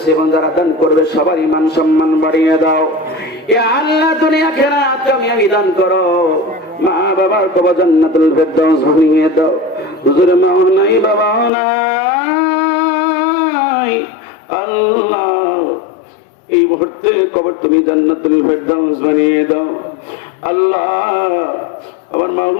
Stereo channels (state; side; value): drops out; right; at 11.5 s